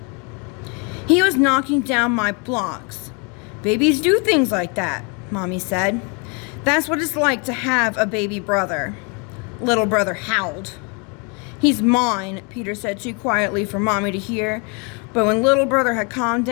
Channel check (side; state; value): right; quieter; 33.8 dB